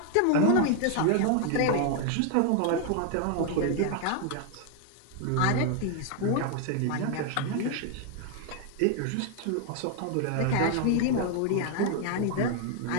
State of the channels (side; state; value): both; different; correlation 0.00